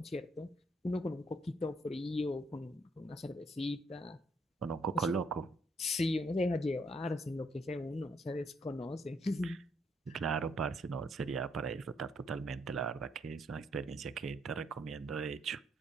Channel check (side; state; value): both; normal; correlation 0.71